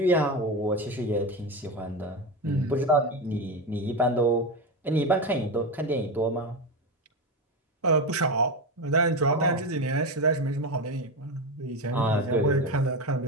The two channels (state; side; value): normal; both; correlation 0.17